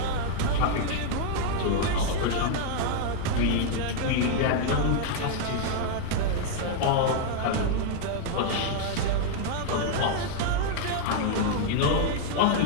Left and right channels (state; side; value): different; both; correlation 0.00